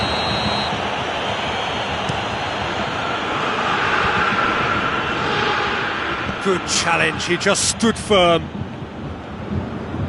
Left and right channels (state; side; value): identical; both; correlation 1.00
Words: Good challenge, he just stood firm.